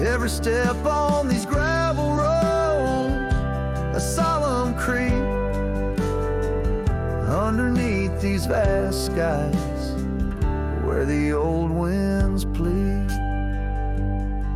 Every step on these gravel roads, a solemn creep underneath these vast skies where the old winds plead.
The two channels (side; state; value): both; identical; correlation 1.00